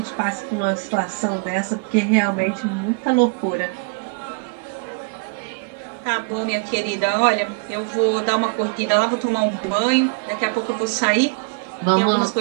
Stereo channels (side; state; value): left; quieter; 36.7 dB